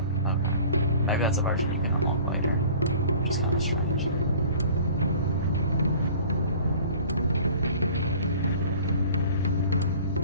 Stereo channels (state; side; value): inverted; both; correlation -0.47